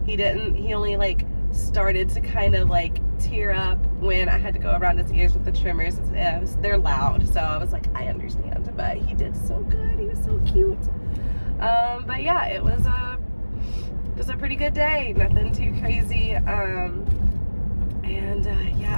He only like started to kind of like tear up when I had to go around his ears with the trimmers. They're loud, so I was like, I understand, but he did so good. He was so cute. But yeah, it was just a pretty good day. Nothing too crazy. Yeah,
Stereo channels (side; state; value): both; inverted; correlation -1.00